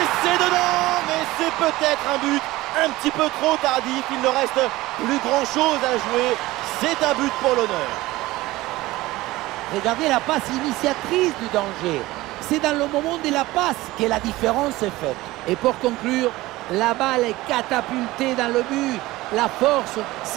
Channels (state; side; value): quieter; left; 18.6 dB